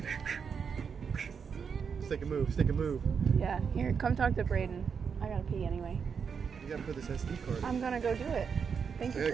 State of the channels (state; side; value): quieter; left; 6.4 dB